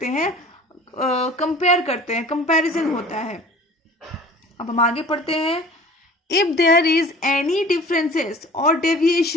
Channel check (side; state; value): both; normal; correlation 0.44